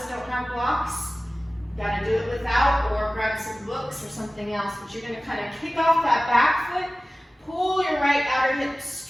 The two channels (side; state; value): both; normal; correlation 0.97